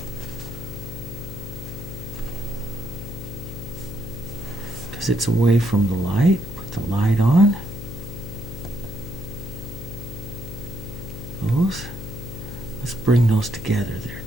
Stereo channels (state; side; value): noise; left; hum, 9 dB below the sound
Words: Because it's away from the light. Put the light on. Those. Let's bring those together